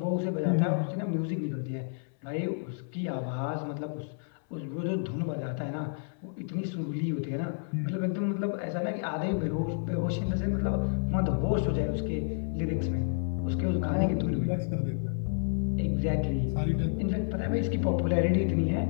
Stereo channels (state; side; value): silent; right; 58 dB below the other